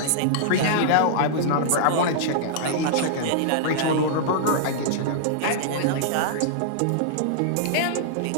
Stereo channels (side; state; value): both; different; correlation -0.01